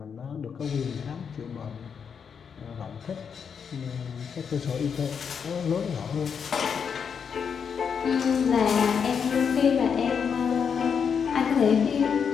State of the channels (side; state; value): right; quieter; 6.8 dB